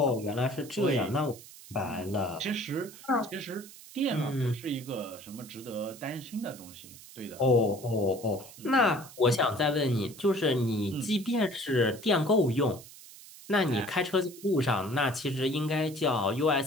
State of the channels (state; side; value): noise; right; hiss, 18 dB below the sound